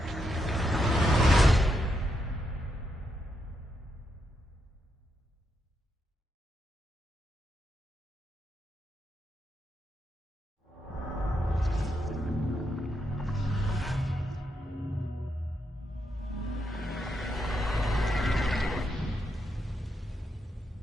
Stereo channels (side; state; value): both; normal; correlation 0.81